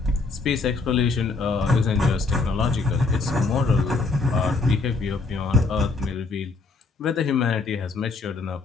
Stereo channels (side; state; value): right; quieter; 3.9 dB